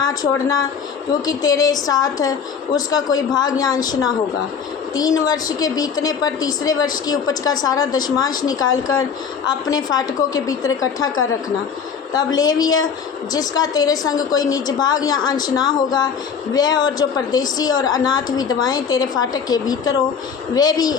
छोड़ना, क्योंकि तेरे साथ उसका कोई भाग या अंश ना होगा। 3 वर्ष के बीतने पर तीसरे वर्ष की उपज का सारा दशमांश निकालकर अपने फाटकों के भीतर इकट्ठा कर रखना। तब लेवीय जिसका तेरे संग कोई निज भाग या अंश ना होगा, वह और जो परदेशी और अनाथ विधवाएं तेरे फाटक के भीतर हो, वे भी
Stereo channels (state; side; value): quieter; right; 6.7 dB